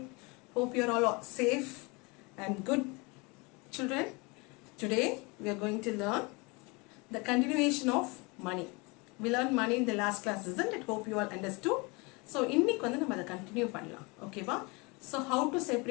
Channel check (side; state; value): right; quieter; 27.8 dB